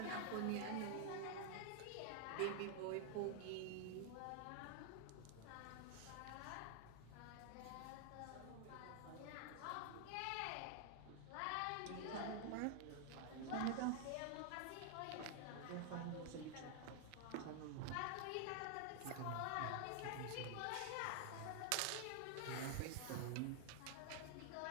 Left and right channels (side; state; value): both; different; correlation 0.00